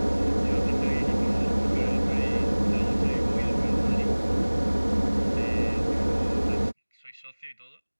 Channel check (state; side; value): inverted; both; correlation -1.00